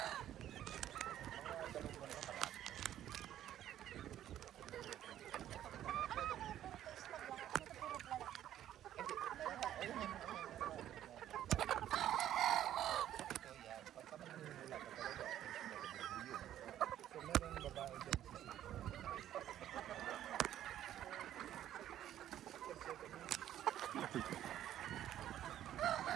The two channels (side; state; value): left; quieter; 11.7 dB